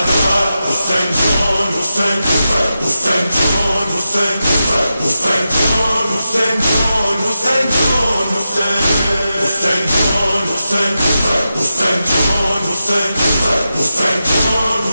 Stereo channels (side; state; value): both; inverted; correlation -0.90